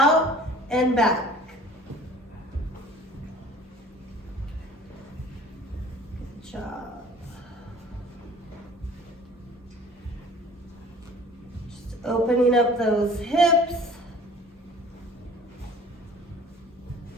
and back. Job. Just opening up those hips.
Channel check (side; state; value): both; normal; correlation 0.48